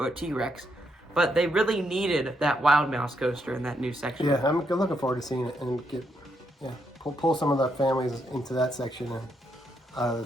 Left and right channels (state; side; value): normal; both; correlation 0.78